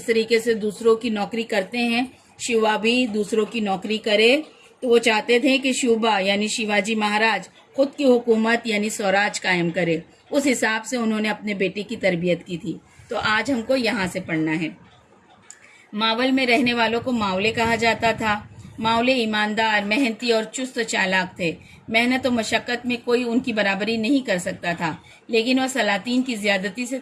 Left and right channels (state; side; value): identical; both; correlation 1.00